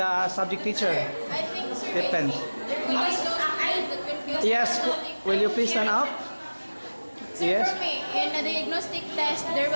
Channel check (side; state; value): both; inverted; correlation -1.00